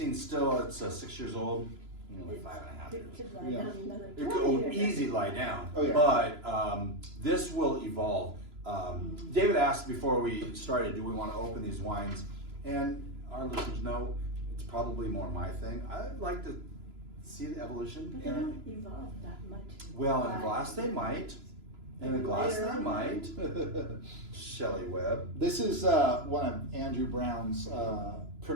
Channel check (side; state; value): left; late; 3.0 ms